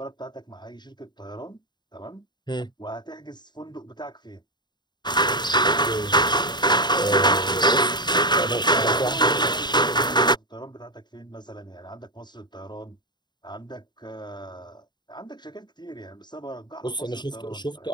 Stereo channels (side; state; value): right; late; 0.21 ms